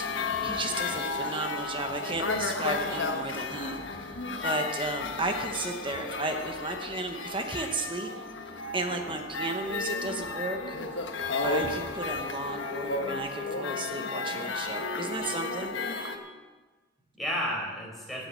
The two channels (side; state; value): both; normal; correlation 0.04